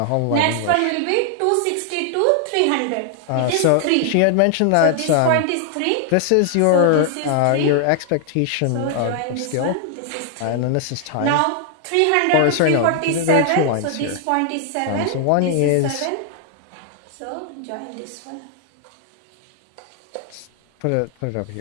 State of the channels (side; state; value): both; different; correlation 0.00